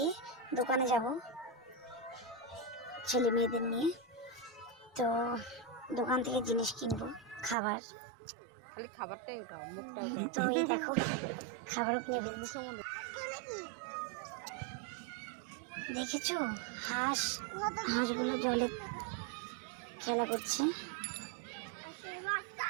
দোকানে যাব ছেলে মেয়েদের নিয়ে। তো দোকান থেকে জিনিস কিনবো, খাবার, খালি খাবারটাই ওঠাও, মুখটা তো এই দেখো খাবারও কিনে দিচ্ছি। দেখেছো হাঁসগুলো জলে খেলা করছে।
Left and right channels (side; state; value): left; drops out; at 7.6 s